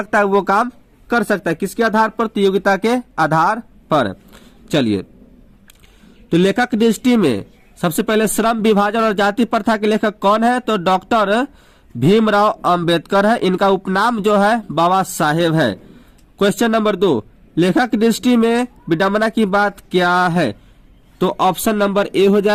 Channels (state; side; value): identical; both; correlation 1.00